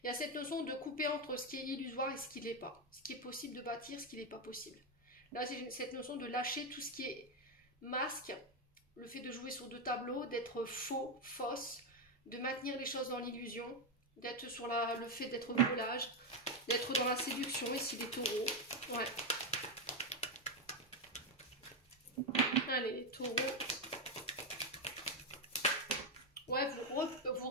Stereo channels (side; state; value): both; normal; correlation 0.06